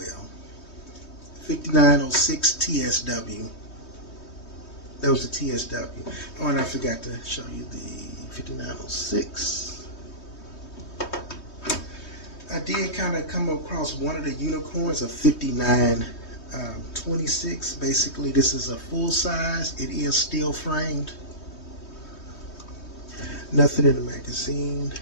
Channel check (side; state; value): right; late; 3.2 ms